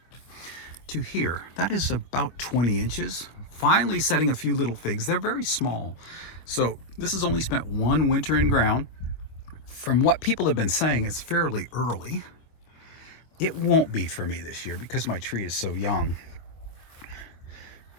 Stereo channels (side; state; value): right; late; 25 ms